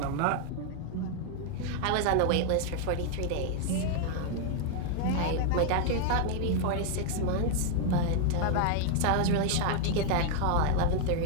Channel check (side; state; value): both; different; correlation 0.00